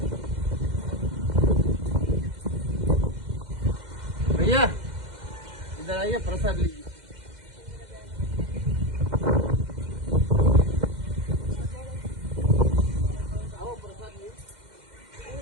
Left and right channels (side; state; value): left; late; 2.1 ms